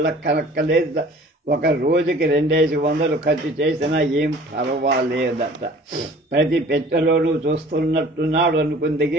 ఒక రోజుకి 2,500 ఖర్చు చేసినా ఏం పర్వాలేదట. ప్రతి పెట్టెలోనూ చూస్తున్నట్టున్నాడు అనుకుంది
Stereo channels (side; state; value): both; normal; correlation 0.48